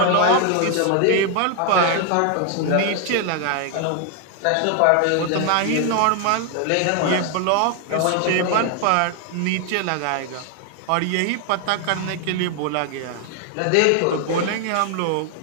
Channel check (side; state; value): both; different; correlation 0.00